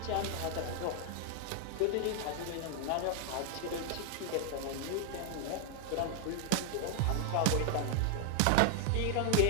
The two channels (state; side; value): different; both; correlation 0.00